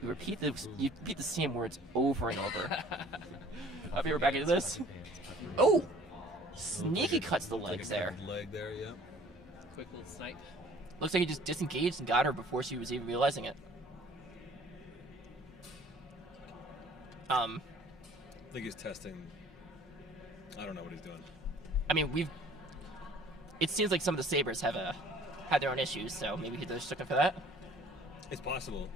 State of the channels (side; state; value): both; normal; correlation 0.52